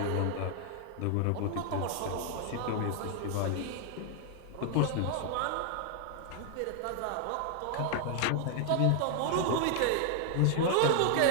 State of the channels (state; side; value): different; both; correlation 0.00